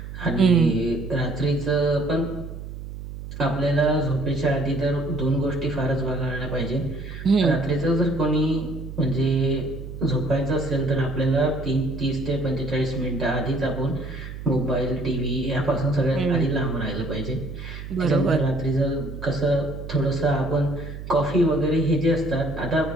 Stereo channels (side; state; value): right; noise; hum, 10 dB below the sound